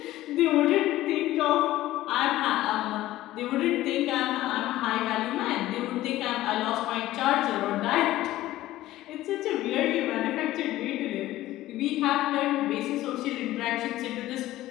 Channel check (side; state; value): right; quieter; 15.5 dB